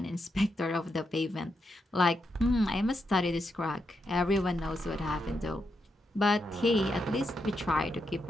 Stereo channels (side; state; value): both; normal; correlation 0.83